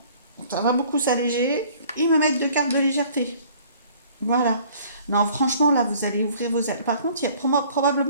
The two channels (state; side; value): inverted; both; correlation -0.54